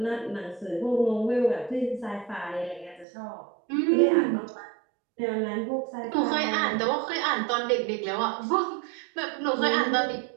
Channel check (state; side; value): drops out; left; at 3.1 s